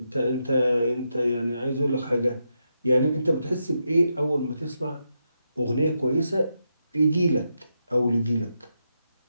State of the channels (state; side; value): inverted; both; correlation -0.84